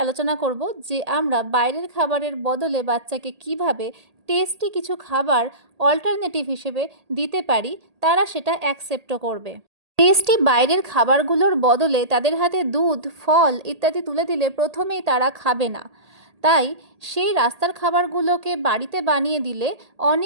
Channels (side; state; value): left; late; 1.8 ms